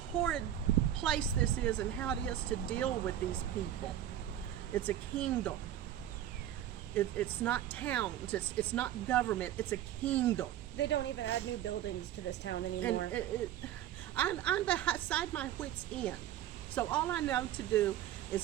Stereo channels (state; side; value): quieter; left; 11.5 dB